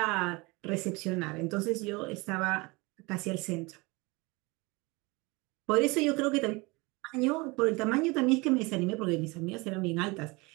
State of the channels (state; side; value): quieter; left; 25.5 dB